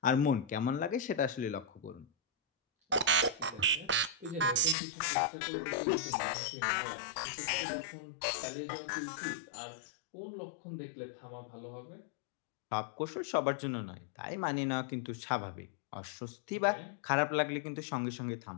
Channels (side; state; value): right; drops out; at 4.8 s